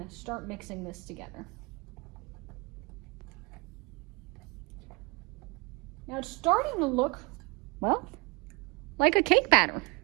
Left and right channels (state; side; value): quieter; left; 28.3 dB